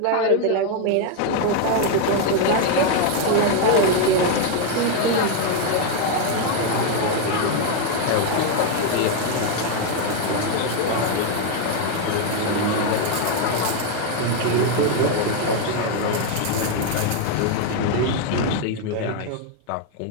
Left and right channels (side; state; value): both; different; correlation 0.01